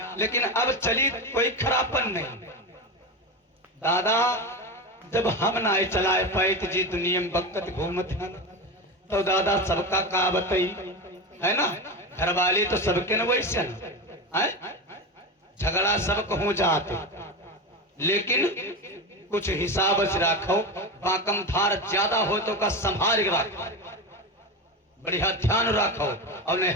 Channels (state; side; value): normal; both; correlation 0.21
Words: लेकिन अब चली कोई खराबपन नहीं। दादा जब हम ना चलाए पाए तो जी दुनिया में बकत घूमते हैं, तो दादा सबका का बताई है ना, घर वाले तो सबके न वैसे ना, झगड़ा सबको हो जाते, लेकिन कुछ हिसाब से रखो, बाकम धार ज्यादा हो तो का संभाल के रखो, बढ़िया ध्यान रखो, और नहीं